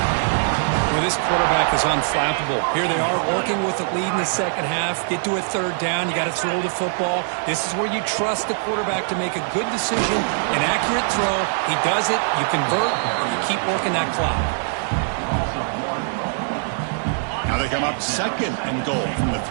Well, this quarterback is unflappable. Here they are working with the lead in the second half. Get to a third down. You got to throw the football. This is where you trust the quarterback to make a good decision, an accurate throw. He does it. You convert, and you keep working that clock. Now they come up second and goal from the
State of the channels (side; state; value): left; silent; digital silence